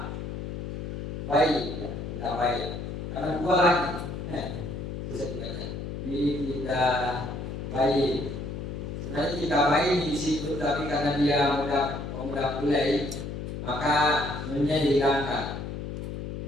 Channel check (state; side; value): noise; left; hum, 6 dB below the sound